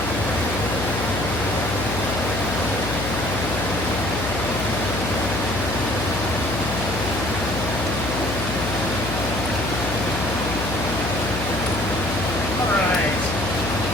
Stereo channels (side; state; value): left; noise; hum, 4 dB below the sound